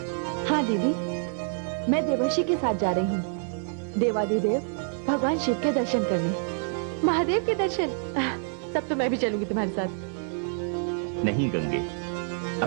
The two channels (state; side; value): silent; left; 60 dB below the other